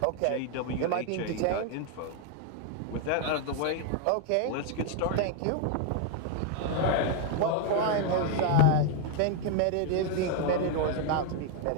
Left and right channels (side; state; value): both; different; correlation 0.00